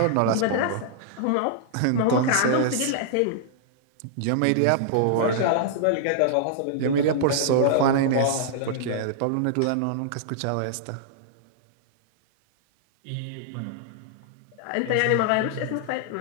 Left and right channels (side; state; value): both; different; correlation -0.01